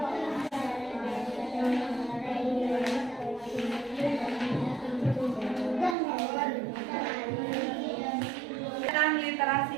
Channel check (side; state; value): left; drops out; at 6.0 s